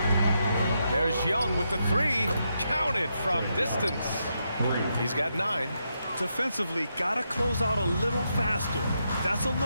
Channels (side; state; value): both; inverted; correlation -0.82